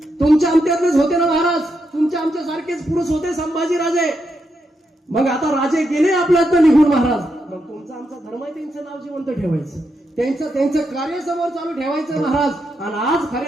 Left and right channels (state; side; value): normal; both; correlation 0.83